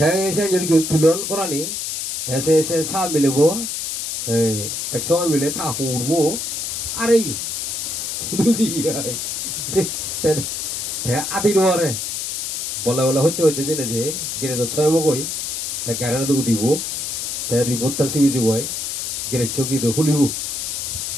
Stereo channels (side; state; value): left; noise; hiss, 3 dB below the sound